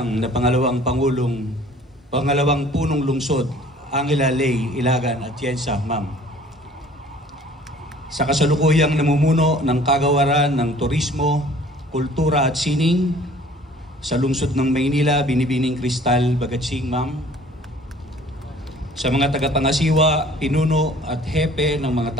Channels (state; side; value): normal; both; correlation 0.52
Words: na pangalawang punong lungsod, Angela Ley Ilagan Atienza, Ma'am. Sa kasalukuyang namumuno ng kagawaran ng turismo, kultura at sining sa lungsod ng Maynila, Binibining Cristal Bagatsing, Ma'am. Sa mga tagapangasiwa, pinuno at hepe ng mga